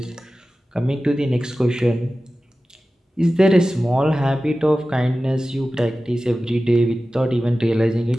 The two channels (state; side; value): normal; both; correlation 0.95